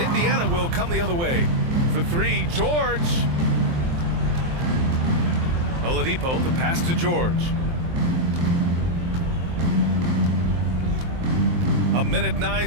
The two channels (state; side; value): late; left; 23 ms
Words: will come the other way. For three, George. Oladipo, the pass to George. A minute